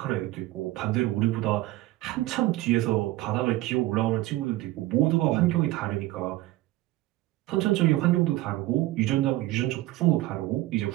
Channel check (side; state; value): left; quieter; 17.2 dB